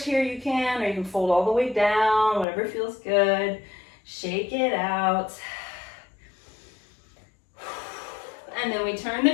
here, you can, or you can fold all the way down, whatever feels good. Shake it out. And then we turn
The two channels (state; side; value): drops out; right; at 2.5 s